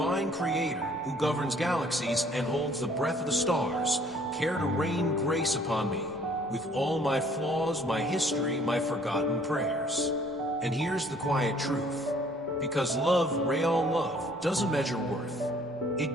creator who governs galaxies and holds the breath of the stars care to rain grace upon me with all my flaws, my history, my forgotten prayers? And here's the quiet truth. Because love, real love, doesn't measure worth.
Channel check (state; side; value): normal; both; correlation 0.58